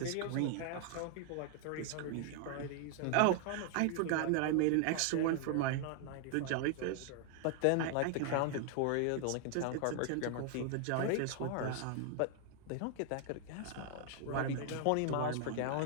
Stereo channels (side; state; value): both; different; correlation 0.00